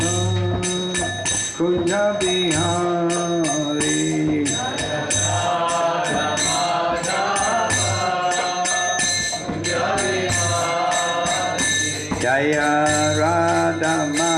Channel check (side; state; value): both; identical; correlation 1.00